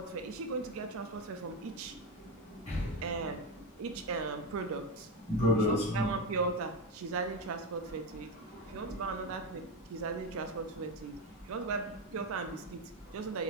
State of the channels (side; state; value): both; normal; correlation 0.14